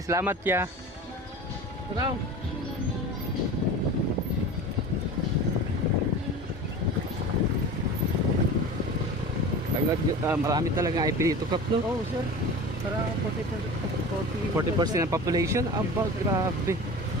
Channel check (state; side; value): normal; both; correlation 0.34